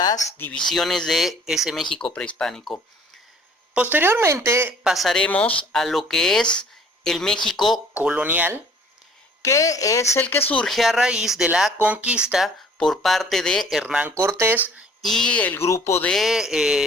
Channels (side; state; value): both; normal; correlation 0.54